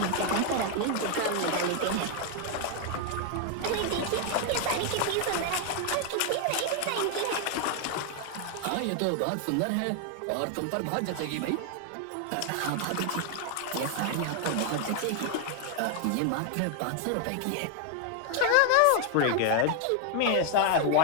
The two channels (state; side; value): different; both; correlation 0.00